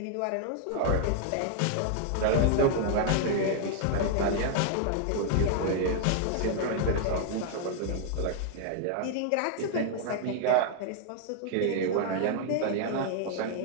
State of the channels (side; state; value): both; different; correlation 0.00